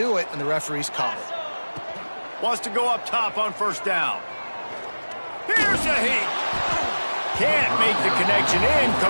it, and the referees call it. Wants to go up top on 1st down. Here's a heat. Can't make the connection.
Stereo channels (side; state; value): both; inverted; correlation -1.00